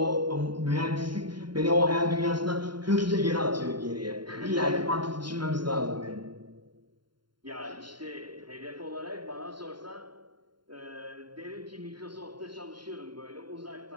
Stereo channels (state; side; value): late; left; 0.72 ms